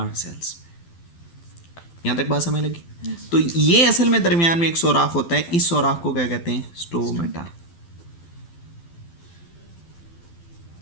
सेल्स में। यहां तक बात समझ लगी? तो ये असल में दरमियान में एक सोराख होता है, इस सोराख को क्या कहते हैं? स्टोमेटा।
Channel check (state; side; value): late; right; 12 ms